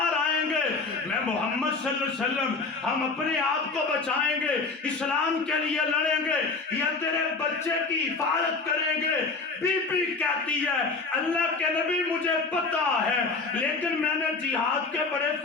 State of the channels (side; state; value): right; quieter; 4.1 dB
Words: آئیں گے، میں محمد صلی اللہ علیہ وسلم ہم اپنے آپ کو بچائیں گے، اسلام کے لیے لڑیں گے یا تیرے بچے کی حفاظت کریں گے؟ بی بی کہتی ہے اللہ کے نبی مجھے پتا ہے، لیکن میں نے جہاد کے بڑے